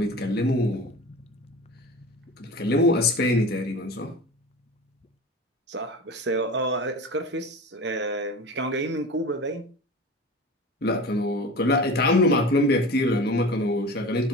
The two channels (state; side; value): normal; both; correlation 0.34